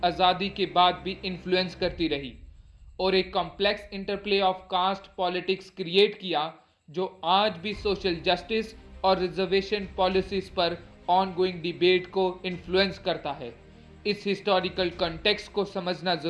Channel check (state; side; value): identical; both; correlation 1.00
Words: आज़ादी के बाद भी इन्फ्लुएंस करती रही, और एक complex interplay of caste politics create किया जो आज भी सोशल जस्टिस और रिजर्वेशन पॉलिसीज पर ऑनगोइंग डिबेट को इन्फ्लुएंस करता है। इस हिस्टोरिकल कॉन्टेक्स्ट को समझना